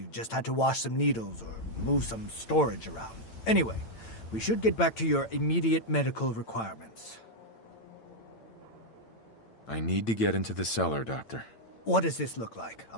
just had to wash some needles or move some storage around. Anyway, we should get back to your immediate medical requirements. I need to get into the cellar, Doctor. What does this look like? A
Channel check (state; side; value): late; right; 8.9 ms